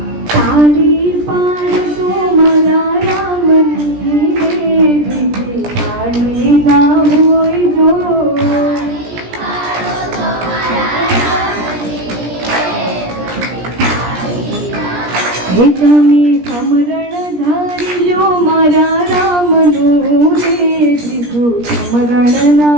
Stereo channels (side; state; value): left; late; 17 ms